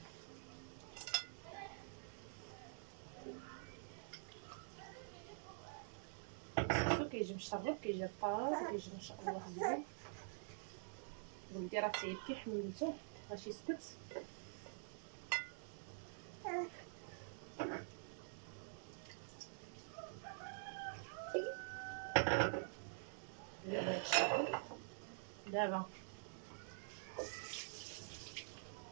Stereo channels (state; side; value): silent; left; digital silence